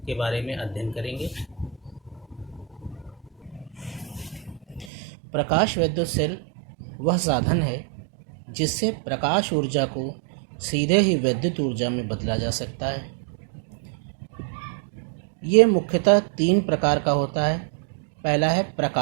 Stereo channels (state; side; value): drops out; left; at 4.9 s